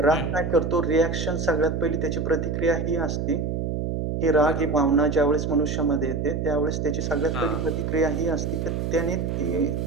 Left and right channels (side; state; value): right; noise; hum, 2 dB below the sound